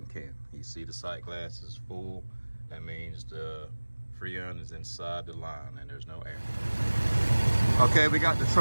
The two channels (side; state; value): both; inverted; correlation -1.00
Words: can. You see the sight glass is full. That means the Freon is inside the line and there's no air. Okay, we got the